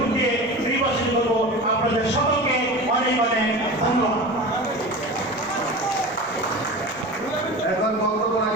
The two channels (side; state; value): both; normal; correlation 0.31